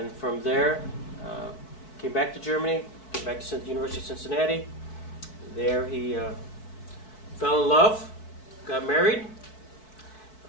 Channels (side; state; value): right; late; 4.6 ms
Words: from there, came back to Germany, came back to the University of Cincinnati. There he fell in love, got married,